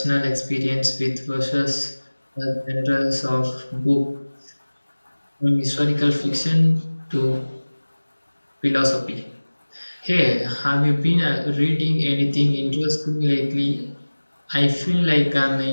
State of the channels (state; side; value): inverted; both; correlation -1.00